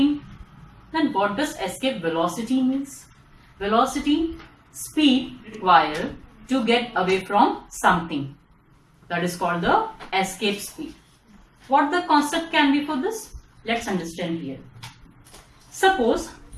Then what does escape velocity means? Velocity, speed required to get away from something. That is called the escape speed. What the concept can be for this? Let's understand here. Suppose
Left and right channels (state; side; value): identical; both; correlation 1.00